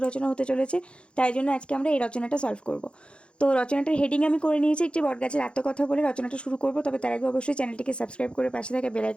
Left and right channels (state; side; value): late; right; 0.057 ms